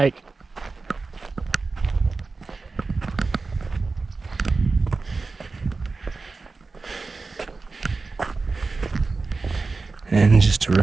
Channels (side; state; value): left; quieter; 4.0 dB